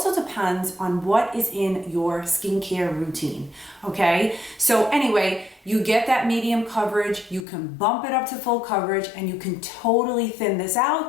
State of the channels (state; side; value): drops out; right; at 7.5 s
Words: depends on what is in your skincare routine, okay? So anyway, you get that medium coverage, you can bump it up to full coverage, and you can totally thin this